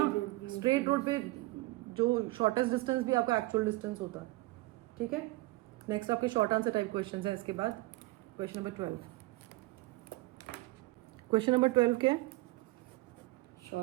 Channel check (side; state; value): left; quieter; 21.1 dB